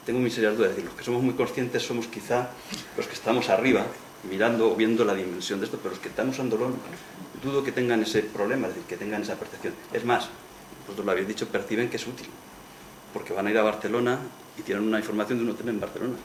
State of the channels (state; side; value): identical; both; correlation 1.00